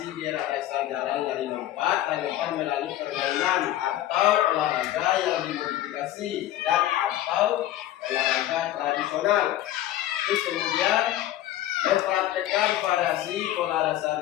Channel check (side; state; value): right; quieter; 13.5 dB